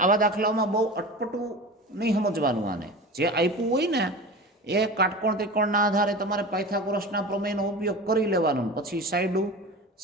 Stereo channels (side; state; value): both; normal; correlation 0.32